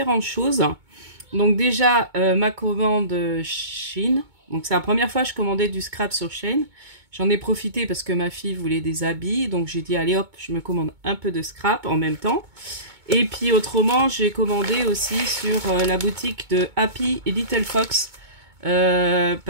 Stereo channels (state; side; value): late; left; 2.2 ms